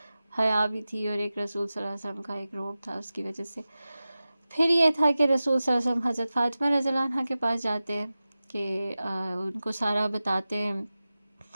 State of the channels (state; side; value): inverted; both; correlation -0.95